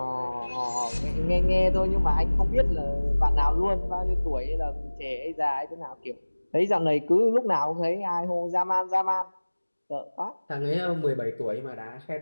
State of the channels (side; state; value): both; inverted; correlation -1.00